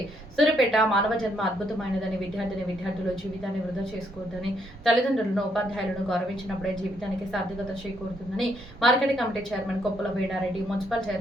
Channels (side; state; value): both; normal; correlation 0.73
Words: సూర్యాపేట మానవ జన్మ అద్భుతమైనదని విద్యార్థులు జీవితాన్ని వృధా చేసుకోవద్దని, తల్లిదండ్రులను ఉపాధ్యాయులను గౌరవించినప్పుడే జీవితానికి సార్థకత చేకూరుతుందని market committee chairman Koppala Venareddy, municipal